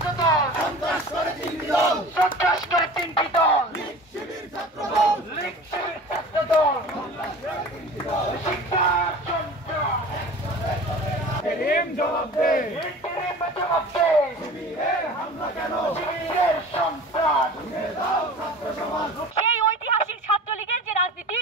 দল সন্ত্রাস করে তিনটি দল লীগ শিবির ছাত্র দল শিক্ষার সন্ত্রাস জবাব দে শিবিরের হামলা কেন শিবিরের সন্ত্রাস সেই ঐতিহাসিক ছাত্রলীগের যে রাজনীতি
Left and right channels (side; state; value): both; normal; correlation 0.39